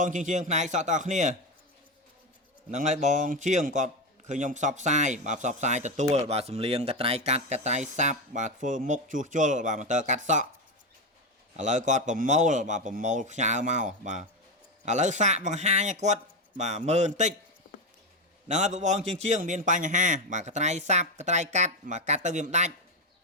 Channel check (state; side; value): normal; both; correlation 0.13